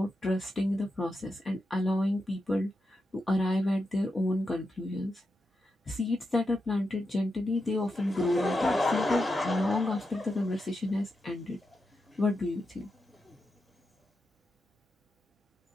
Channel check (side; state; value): both; normal; correlation 0.87